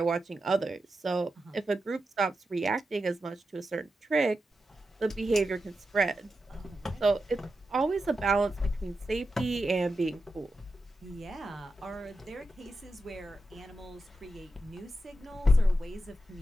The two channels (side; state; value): both; normal; correlation 0.89